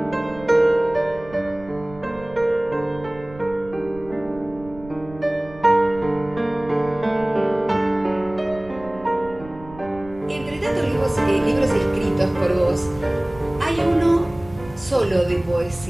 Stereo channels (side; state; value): right; noise; rumble, 19 dB below the sound